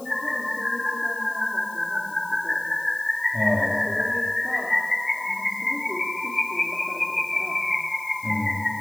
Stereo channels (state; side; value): noise; left; hiss, 19 dB below the sound